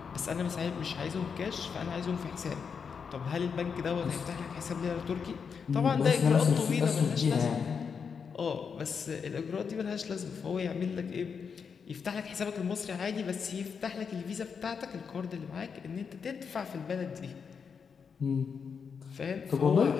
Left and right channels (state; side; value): quieter; right; 6.2 dB